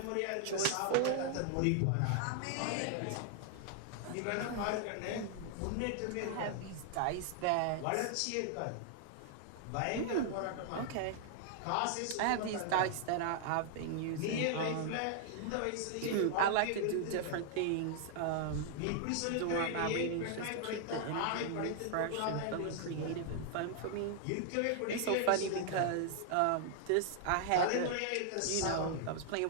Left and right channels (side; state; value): both; different; correlation 0.00